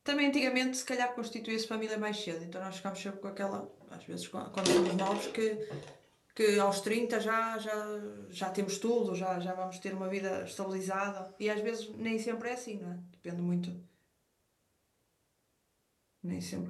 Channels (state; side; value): identical; both; correlation 1.00